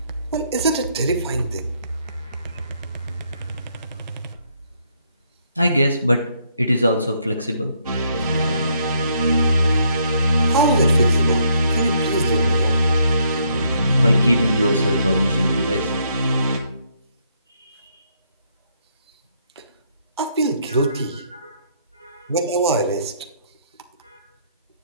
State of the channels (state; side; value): inverted; both; correlation -0.72